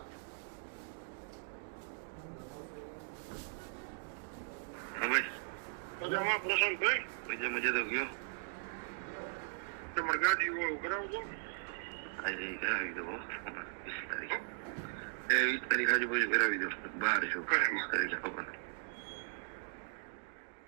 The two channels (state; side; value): silent; left; digital silence